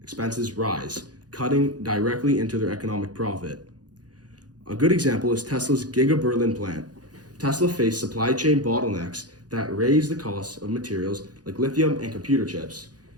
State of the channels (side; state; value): left; late; 0.69 ms